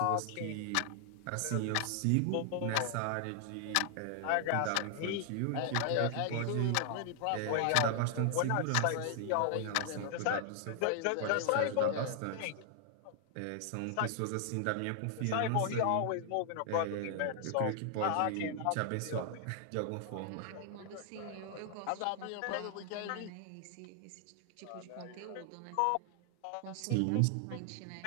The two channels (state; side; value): different; both; correlation 0.00